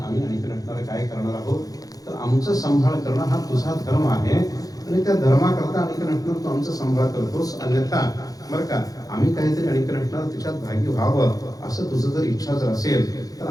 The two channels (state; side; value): late; right; 0.17 ms